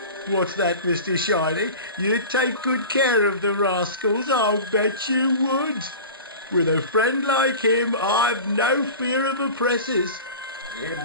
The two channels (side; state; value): both; inverted; correlation -0.35